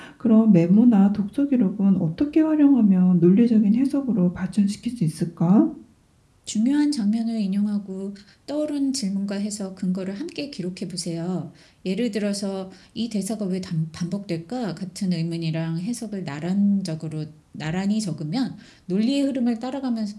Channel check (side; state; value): both; identical; correlation 1.00